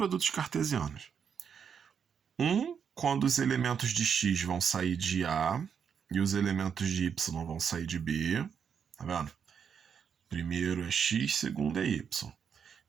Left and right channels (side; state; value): left; quieter; 7.2 dB